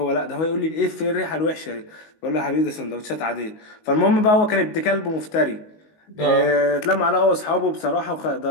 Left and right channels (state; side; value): late; right; 19 ms